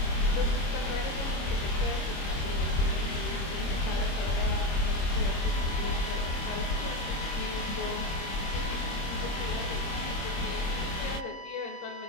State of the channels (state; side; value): late; right; 26 ms